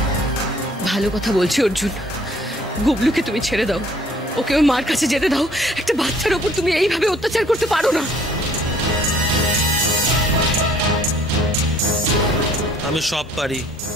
ভালো কথা বলছি অর্জুন, গুবলুকে তুমি ছেড়ে দাও, ওকে ওই মার কাছে যেতে দাও। একটা বাচ্চার ওপর তুমি এইভাবে অত্যাচার করতে পারো না। আমি সব পারি।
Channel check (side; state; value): both; normal; correlation 0.58